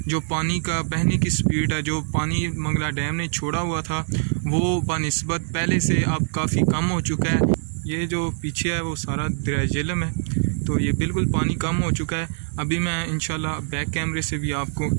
جو پانی کا بہنے کی سپیڈ ہے، جو پانی منگلا ڈیم نے چھوڑا ہوا تھا، وہ بنسبت پہلے سے اب کافی کم ہو چکا ہے۔ یہ جو پیچھے ہے وہ سارا دریائے جہلم ہے، تو یہ بالکل پانی کم ہو چکا ہے۔ ابھی میں انشاءاللہ بیک کیمرے سے بھی آپ کو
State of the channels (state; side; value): silent; left; 63 dB below the other